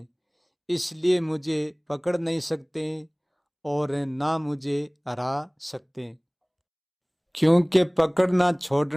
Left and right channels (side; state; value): both; identical; correlation 1.00